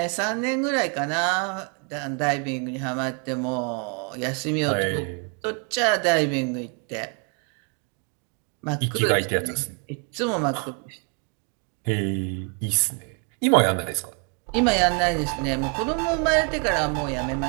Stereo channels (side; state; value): left; quieter; 38.1 dB